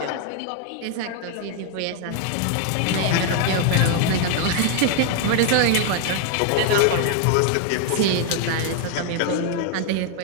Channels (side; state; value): both; different; correlation 0.00